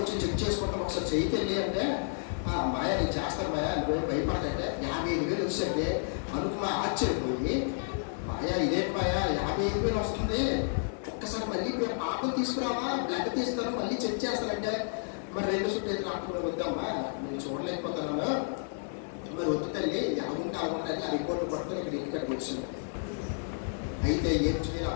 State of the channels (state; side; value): silent; right; 57 dB below the other